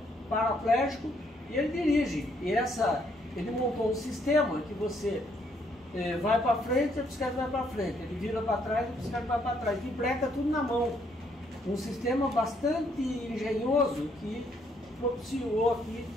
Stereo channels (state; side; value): normal; both; correlation 0.70